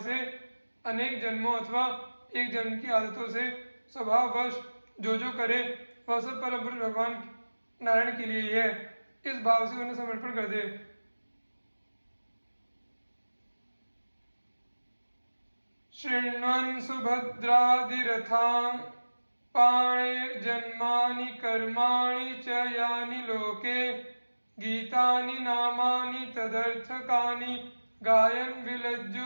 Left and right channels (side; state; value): both; inverted; correlation -1.00